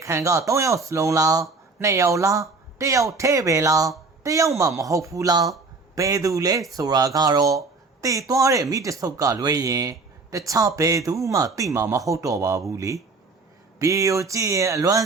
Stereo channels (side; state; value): left; quieter; 4.0 dB